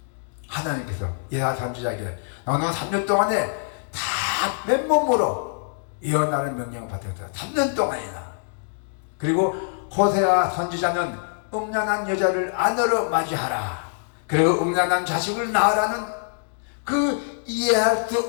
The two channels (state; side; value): silent; right; digital silence